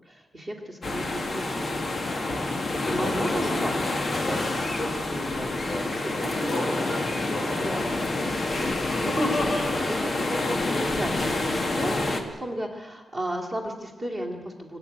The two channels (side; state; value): both; normal; correlation 0.89